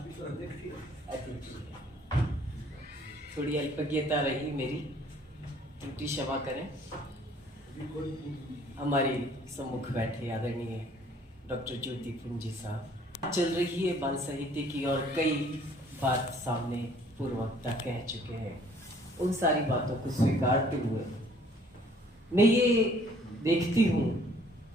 थोड़ी अल्पज्ञता रही मेरी, त्रुटि क्षमा करें। हमारे सम्मुख बैठे आदरणीय डॉक्टर ज्योति पुंजी साहब। चल रही है बाल साहित्य की और कई बात सामने पूर्ववक्ता कह चुके हैं। उन सारी बातों को स्वीकारते हुए मैं ये देखती हूँ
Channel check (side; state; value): both; normal; correlation 0.58